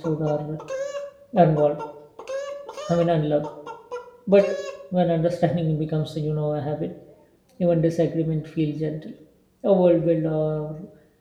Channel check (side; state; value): both; identical; correlation 1.00